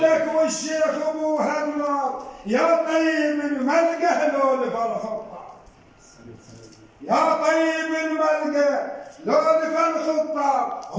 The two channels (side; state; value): both; identical; correlation 1.00